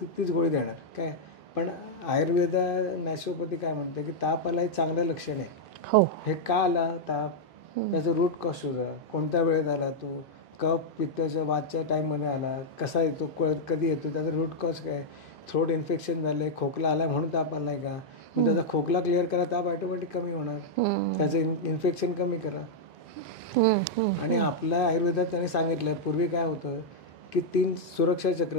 गोळी देणार काय. पण आयुर्वेदा नॅचरोपॅथी काय म्हणते की ताप आला हे चांगलं लक्षण आहे. हो. हे का आला ताप, त्याचं रूट कॉज शोधा, कोणत्या वेळेत आला तो, कफ पित्ताच्या वादच्या टाईममध्ये आला, कसा येतो, कधी येतो, त्याचा रूट कॉज काय, थ्रोट इन्फेक्शन झालं आहे, खोकला आला म्हणून ताप आला आहे का, मग त्याचा खोकला क्लिअर करा, ताप ऑटोमॅटिक कमी होणार, त्याचं इन्फेक्शन कमी करा. आणि आपल्या आयुर्वेदात त्यांनी सांगितलं पूर्वी काय होतं की 3 सुरक्षा चक्र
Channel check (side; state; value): both; normal; correlation -0.03